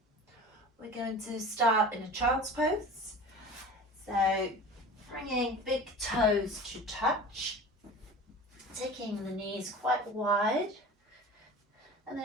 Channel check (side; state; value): both; normal; correlation 0.38